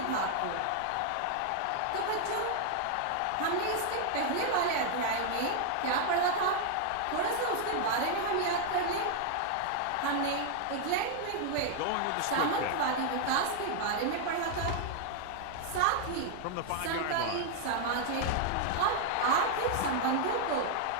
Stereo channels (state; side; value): different; both; correlation 0.00